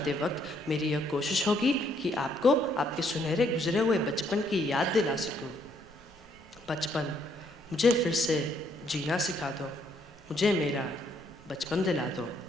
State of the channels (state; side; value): noise; right; rumble, 25 dB below the sound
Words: वक्त मेरी यह कोशिश होगी कि आपको आपके सुनहरे गुजरे हुए बचपन की याद दिला सकूँ। बचपन, मुझे फिर से जीना सिखा दो, मुझे मेरा बचपन दिला दो।